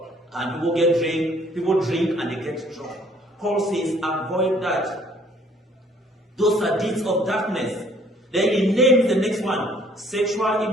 and people drink and they get drunk. Paul says, avoid that. Those are deeds of darkness. Then he names the next one, sexual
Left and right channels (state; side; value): normal; both; correlation 0.60